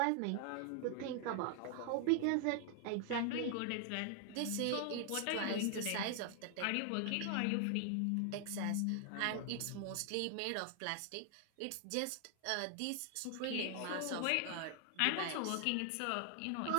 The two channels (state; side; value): different; both; correlation 0.00